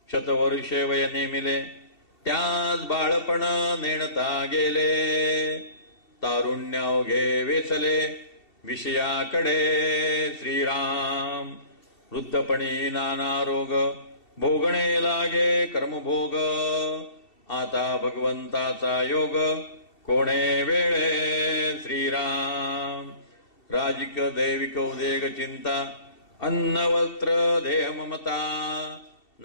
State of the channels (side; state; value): right; late; 2.7 ms